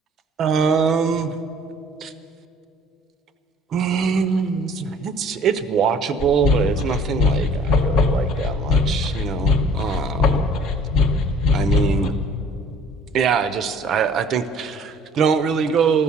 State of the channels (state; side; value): normal; both; correlation 0.52